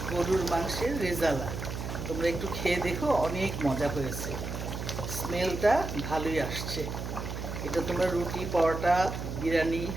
গরুর মাংসের রেজালা তোমরা একটু খেয়ে দেখো, অনেক মজা হয়েছে। স্মেলটা ভালোই আসছে। এটা তোমরা রুটি, পরোটা, বিরিয়ানি,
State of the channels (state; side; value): noise; right; hum, 6 dB below the sound